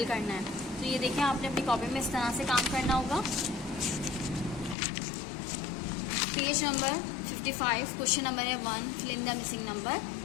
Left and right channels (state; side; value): drops out; right; at 4.8 s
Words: करना है। तो ये देखें, आपने अपनी कॉपी में इस तरह से काम करना होगा। पेज नंबर 55 क्वेश्चन नंबर है 1, fill in the missing number.